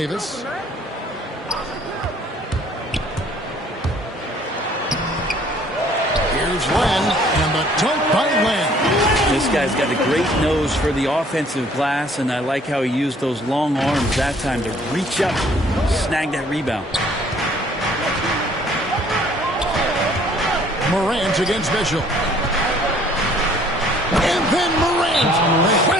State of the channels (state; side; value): normal; both; correlation 0.58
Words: Here's Len, and the dunk by Len. This guy's got a great nose for the offensive glass, and I like how he used those long arms that time to reach up, snag that rebound. Morant against Mitchell. And then Morant